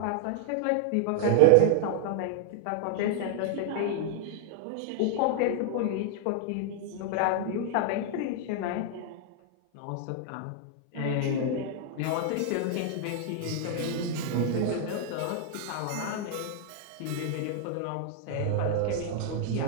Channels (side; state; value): both; different; correlation 0.00